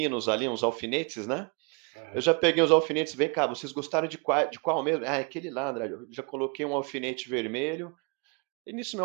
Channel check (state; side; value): quieter; left; 33.9 dB